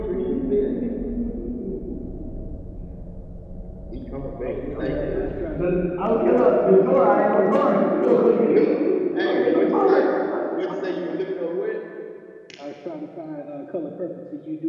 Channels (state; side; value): identical; both; correlation 1.00